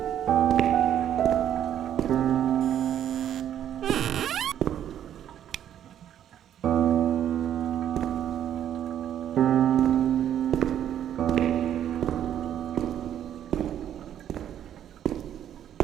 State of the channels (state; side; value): quieter; left; 10.4 dB